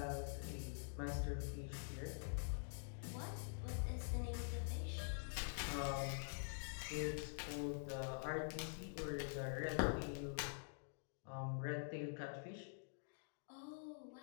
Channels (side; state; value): right; silent; digital silence